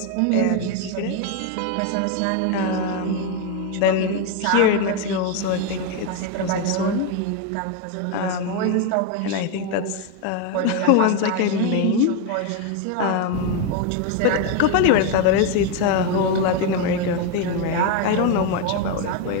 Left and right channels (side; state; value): both; different; correlation 0.01